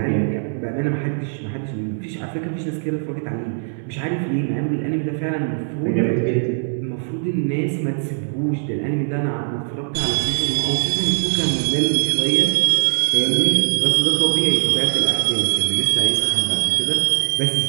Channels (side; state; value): left; silent; digital silence